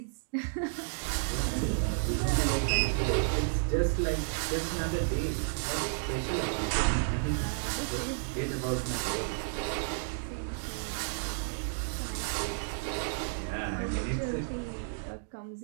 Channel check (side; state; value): left; silent; digital silence